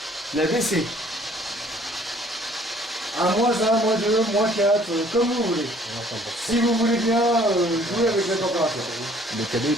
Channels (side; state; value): both; normal; correlation 0.57